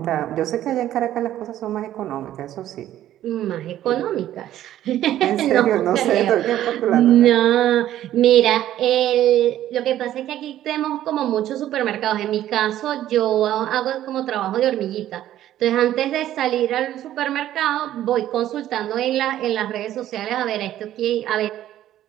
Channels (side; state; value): left; quieter; 12.6 dB